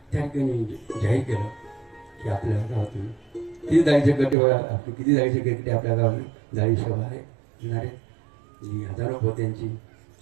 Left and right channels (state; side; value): drops out; left; at 4.4 s